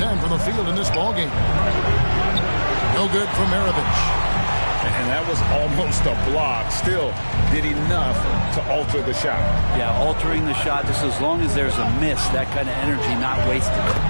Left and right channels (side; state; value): both; inverted; correlation -1.00